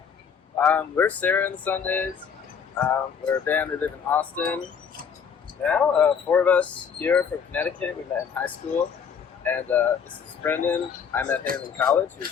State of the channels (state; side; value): quieter; right; 6.9 dB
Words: We're Sarah and the Sundays. We're a band that live in Austin. Now, four of us here from Connecticut. We met in high school. And this is Brendan. I met him in college. He